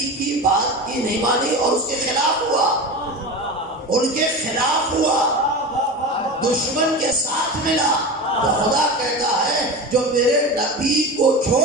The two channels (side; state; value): both; normal; correlation 0.27